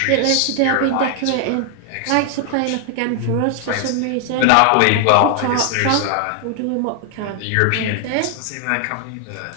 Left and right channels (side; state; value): both; different; correlation 0.00